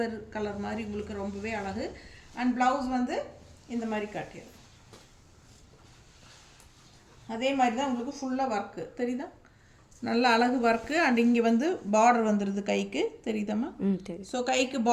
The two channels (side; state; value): both; identical; correlation 1.00